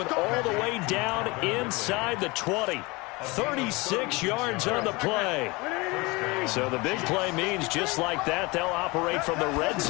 all the way down inside the 20. 36 yards on the play. So the big play means just like that, they'll operate from the red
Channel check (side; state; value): right; quieter; 24.6 dB